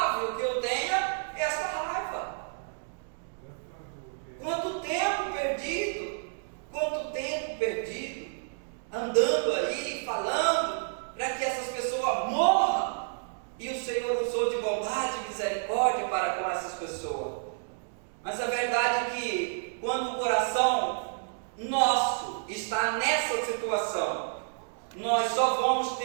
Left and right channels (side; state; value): left; silent; digital silence